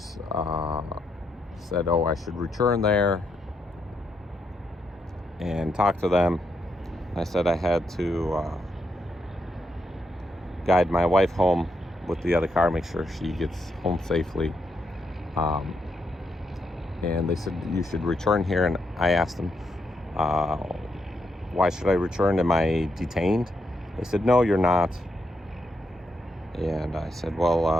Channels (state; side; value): normal; both; correlation 0.80